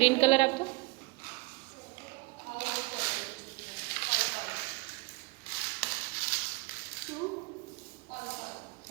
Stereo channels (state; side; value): quieter; left; 24.2 dB